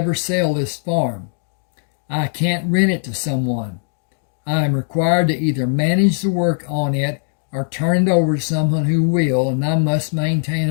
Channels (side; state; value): right; silent; digital silence